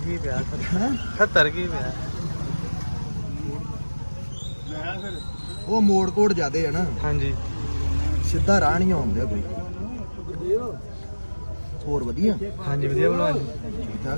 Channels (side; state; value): both; inverted; correlation -1.00